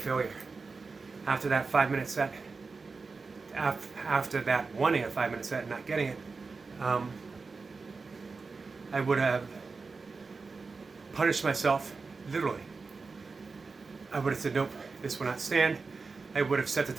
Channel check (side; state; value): left; quieter; 4.3 dB